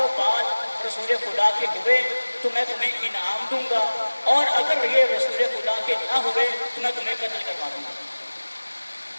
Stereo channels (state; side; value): inverted; both; correlation -1.00